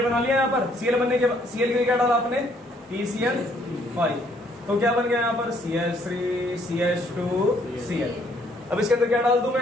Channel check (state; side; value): normal; both; correlation 0.66